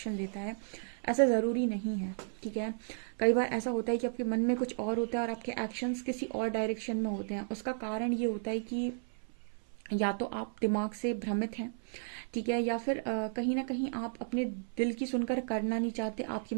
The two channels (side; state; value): left; silent; 55 dB below the other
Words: लेता है। ऐसा ज़रूरी नहीं है। ठीक है, कई बार ऐसा होता है कि आपके मन में कुछ और होता है और आपके एक्शंस किसी और डायरेक्शन में होते हैं। उसका कारण ये होता है कि या तो आप दिमाग से भ्रमित हैं, ठीक है, या फिर कहीं ना कहीं आप अपने दिल की सुनकर करना नहीं चाहते। आपके